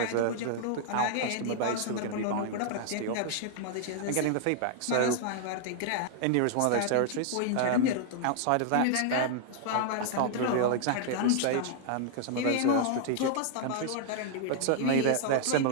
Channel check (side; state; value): both; different; correlation -0.01